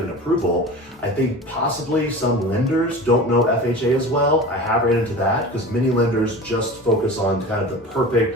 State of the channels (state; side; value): normal; both; correlation 0.34